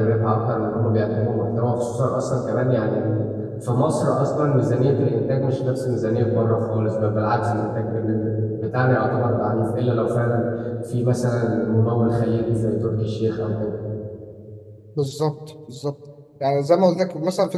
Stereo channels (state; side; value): identical; both; correlation 1.00